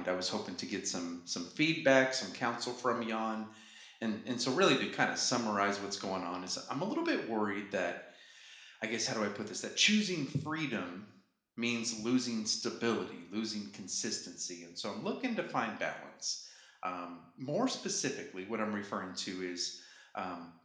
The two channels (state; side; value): identical; both; correlation 1.00